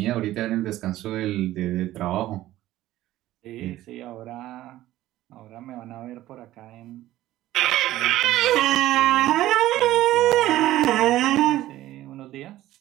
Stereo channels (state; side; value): quieter; left; 15.0 dB